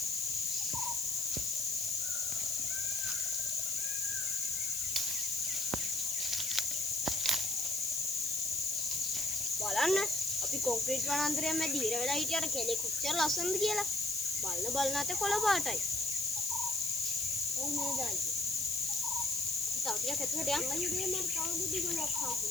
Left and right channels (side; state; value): left; noise; hiss, 2 dB below the sound